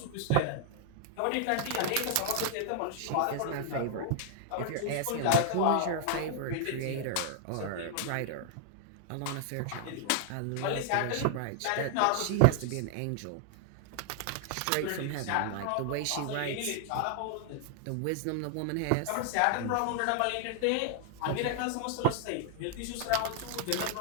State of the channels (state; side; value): different; both; correlation 0.00